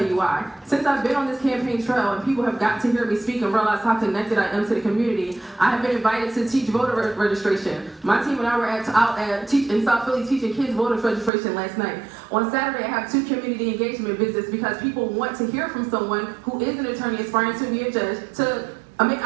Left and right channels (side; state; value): left; drops out; at 11.3 s